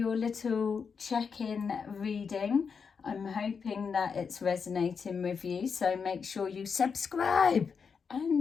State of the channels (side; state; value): right; quieter; 5.9 dB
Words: little check-in reading. I'm hoping that it's resonating with you. So make sure you subscribe